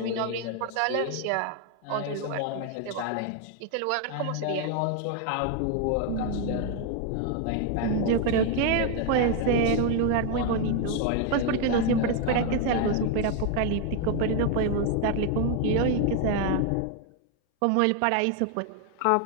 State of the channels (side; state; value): both; different; correlation 0.01